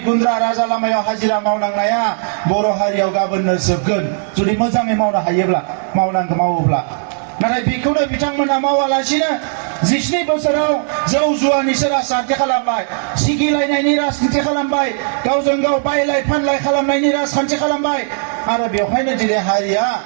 गुन्द्रा राजा लामायाव हाजिरा मावनांनाया बर' हारियाव गाबोननो जोबगोन जुदि मोजाङै मावनो हायोब्ला मावोब्ला नाथाय बेखौनो बिथांमोना मावालासिनो 17 बोसोराव जौ जुवानिसो राजखान्थि खालामबाय सिगिलायनायनि राजखान्थि खालामबाय गावजों गाव बायलाय फानलाय खालामनायनि राजखान्थि खालामबाय आरो बेवहायनो दिनै हारिया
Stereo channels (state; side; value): silent; left; digital silence